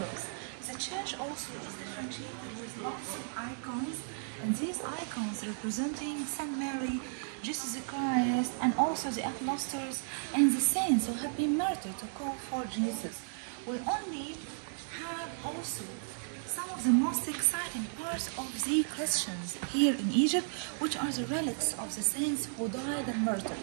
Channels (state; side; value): silent; left; digital silence